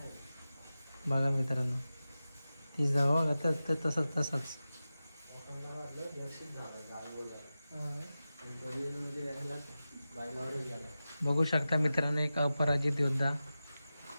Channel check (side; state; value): both; inverted; correlation -0.94